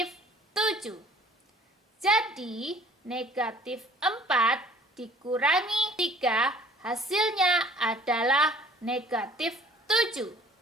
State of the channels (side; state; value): both; normal; correlation 0.53